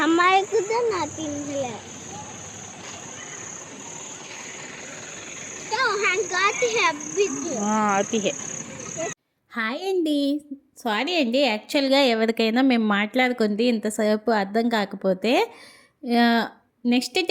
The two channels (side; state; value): both; identical; correlation 1.00